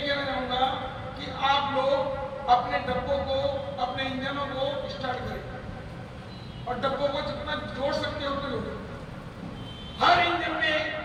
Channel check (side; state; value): both; identical; correlation 1.00